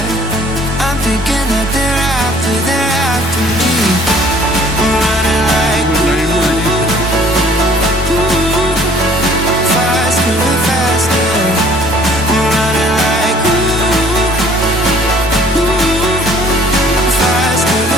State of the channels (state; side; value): normal; both; correlation 0.55